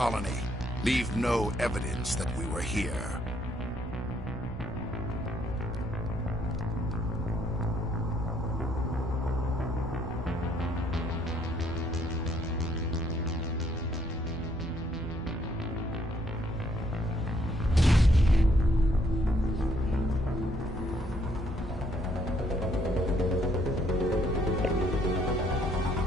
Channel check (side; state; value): both; normal; correlation 0.68